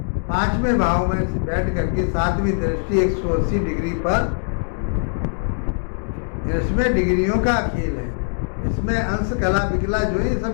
5वें भाव में बैठ करके 7वीं दृष्टि 180 डिग्री पर, इसमें डिग्रियों का खेल है। इसमें अंश, कला, विकला जो है, ये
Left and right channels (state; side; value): silent; right; digital silence